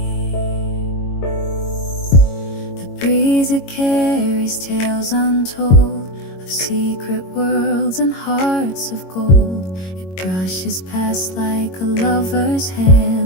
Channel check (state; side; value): late; right; 22 ms